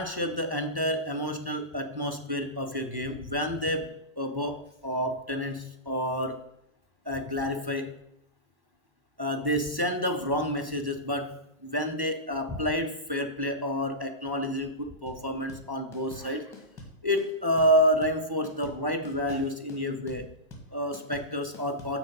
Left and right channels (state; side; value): late; left; 1.1 ms